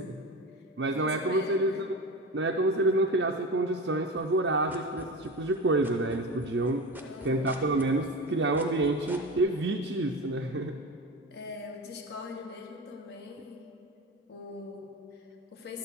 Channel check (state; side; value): normal; both; correlation 0.26